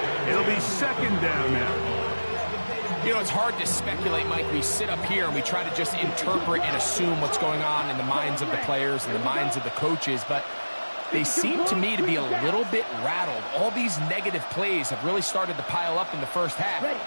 It'll be second down now. You know, it's hard to speculate, Mike. We sit up here and we try to just interpret and assume what's going on in the minds of the players and the minds of the coaches, but they seem to me to be a little bit rattled. All these negative plays have really started to pile up in the first half.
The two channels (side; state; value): both; inverted; correlation -1.00